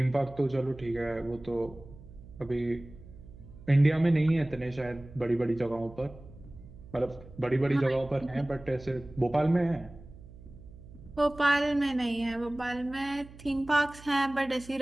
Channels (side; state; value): right; noise; hum, 19 dB below the sound